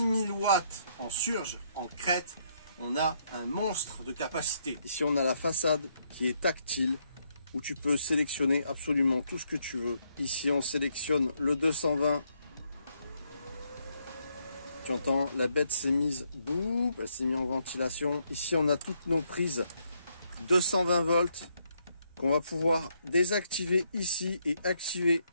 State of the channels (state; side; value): inverted; both; correlation -0.75